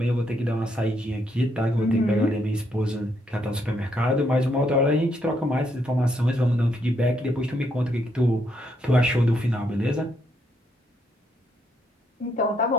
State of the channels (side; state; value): both; normal; correlation 0.75